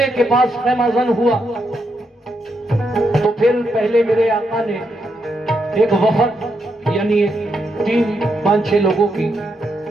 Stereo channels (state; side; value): normal; both; correlation 0.81